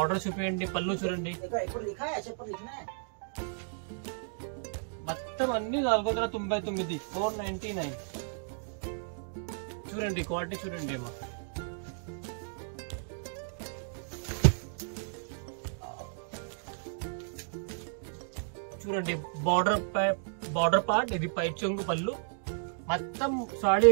చూపించండి, పళ్ళు చూడండి. మొత్తం అన్ని 499 499. చూడండి క్వాలిటీ చూడండి అమ్మా. చూడండి బార్డర్ పార్ట్, ఇది పైట్ చెంగు, పళ్ళు, మొత్తం సాడీ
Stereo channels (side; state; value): left; silent; digital silence